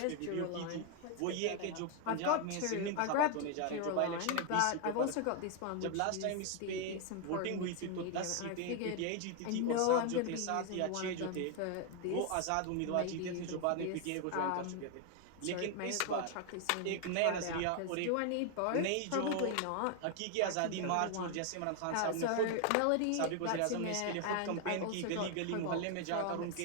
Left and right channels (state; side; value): different; both; correlation 0.00